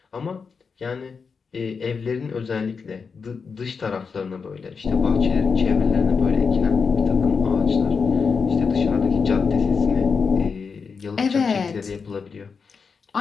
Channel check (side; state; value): right; quieter; 5.4 dB